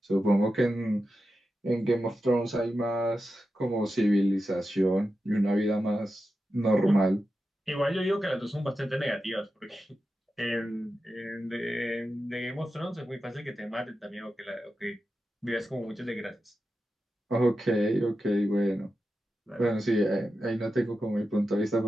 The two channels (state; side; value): normal; both; correlation 0.91